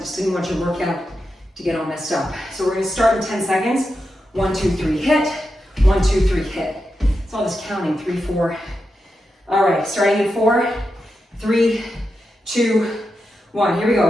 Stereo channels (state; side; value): normal; both; correlation 0.88